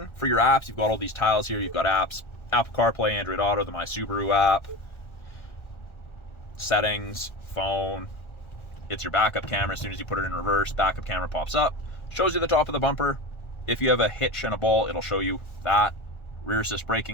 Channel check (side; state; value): right; late; 1.4 ms